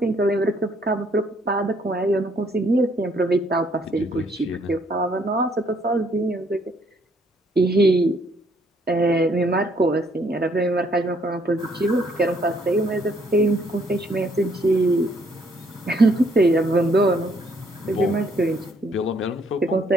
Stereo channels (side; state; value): both; normal; correlation 0.67